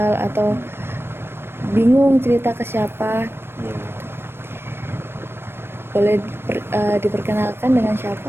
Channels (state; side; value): late; left; 0.11 ms